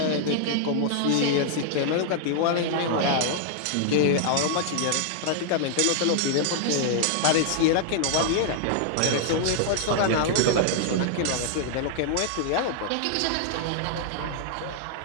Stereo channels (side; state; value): both; different; correlation -0.01